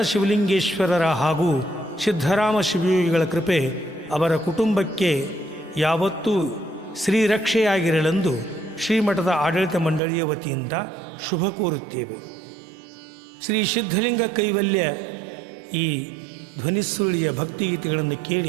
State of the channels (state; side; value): drops out; left; at 10.0 s